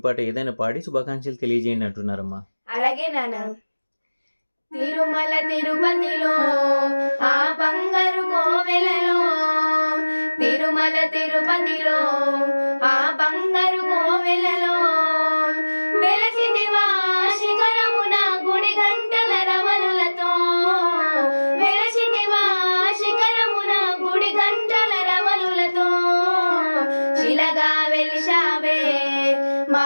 పాట ఏదైనా పాడి శుభాకాంక్షలు తెలియజేయండి అంటున్నారమ్మా. అలాగే నాన్న. తిరుమల తిరుపతిలో ఆ బంగారు కోవెలలో, తిరుమల తిరుపతిలో ఆ బంగారు కోవెలలో వెలసిదివా శిఖరమున గుడి గంటల రవలులతో, వెలసిదివా శిఖరమున గుడి గంటల రవలులతో, శిలగా వెలిశావే మా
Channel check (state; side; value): inverted; both; correlation -1.00